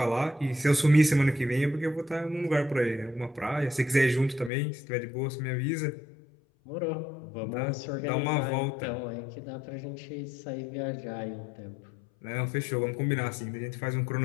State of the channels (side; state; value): right; drops out; at 4.5 s